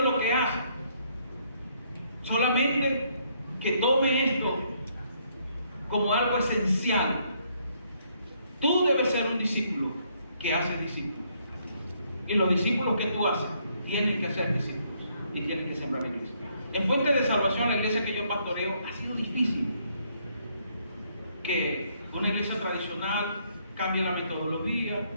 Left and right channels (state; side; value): inverted; both; correlation -0.70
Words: lo que hace. Solamente que tome esto como algo esencial. Tú debes ser un discípulo que hace discípulos. Y los discípulos que tú haces tienen que ser discípulos y tienen que sembrar iglesia. En Fuente de Salvación, la iglesia que yo pastoreo, ha sido difícil que una iglesia tradicional cambie la metodología,